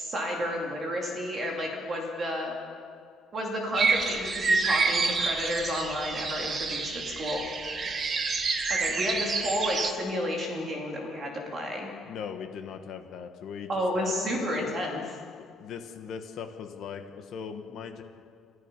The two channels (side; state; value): both; normal; correlation 0.74